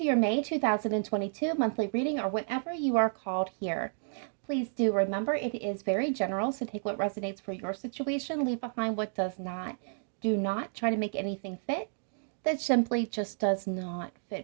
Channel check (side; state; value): left; silent; digital silence